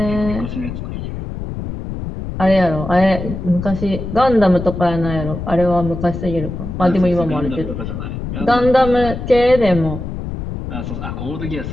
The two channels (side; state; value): left; noise; rumble, 7 dB below the sound